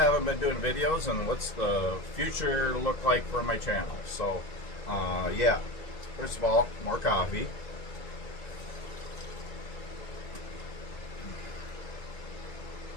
been doing videos and what's the future look like for my channel. So yeah, first of all, more coffee.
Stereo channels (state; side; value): late; right; 2.0 ms